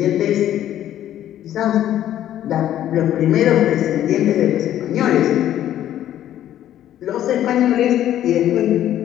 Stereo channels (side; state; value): right; quieter; 11.8 dB